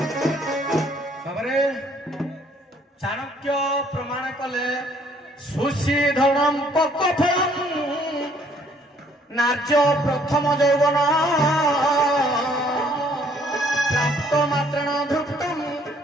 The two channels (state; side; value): normal; both; correlation 0.62